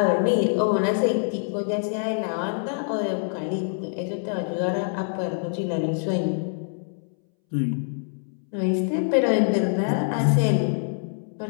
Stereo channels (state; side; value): silent; right; 62 dB below the other